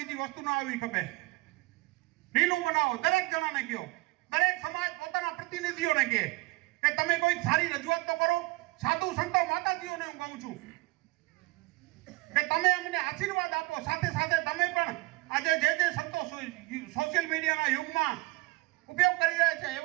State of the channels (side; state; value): left; quieter; 23.0 dB